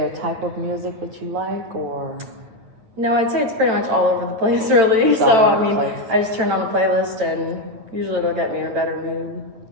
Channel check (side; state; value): left; late; 8.9 ms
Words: a type of music that you like, or? No, I'd say it's pretty much all over the place, really. It's all over I the mean, place. I just turn on a playlist and usually it'll get me in a better mood.